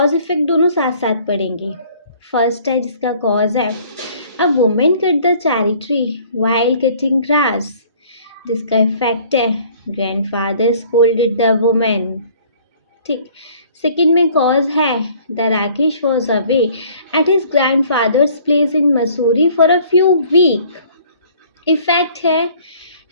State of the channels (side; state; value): both; inverted; correlation -0.55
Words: इफेक्ट दोनों साथ साथ पढ़ेंगे। फर्स्ट है जिसका कॉज है, a women cut the cherry tree while cutting grass. जिसका इफेक्ट है, ग्रैंडफादर स्कोल्डेड द वुमेन। ठीक। सेकंड में कॉज है, the Rakesh was away at his grandfather's place in Mussoorie for a few week. Effect है,